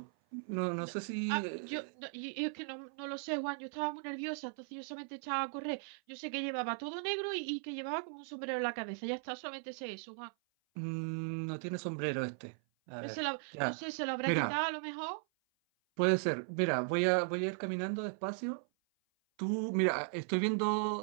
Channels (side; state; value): left; silent; 53 dB below the other